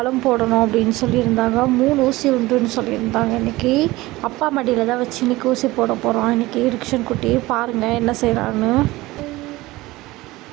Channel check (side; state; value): left; quieter; 19.4 dB